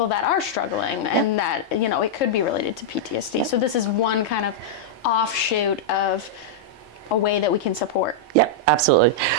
that are struggling, and that it could be related to PTSD. So this is one kind of offshoot of a way that we can support. Yep, absolutely.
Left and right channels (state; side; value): normal; both; correlation -0.07